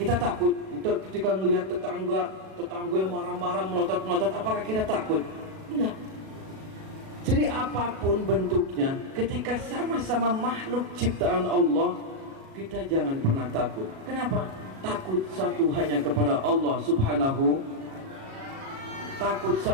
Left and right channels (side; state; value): left; late; 37 ms